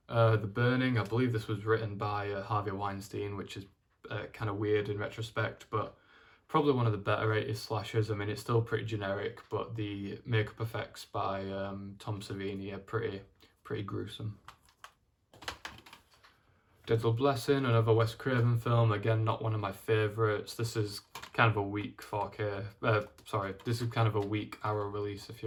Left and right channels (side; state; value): both; identical; correlation 1.00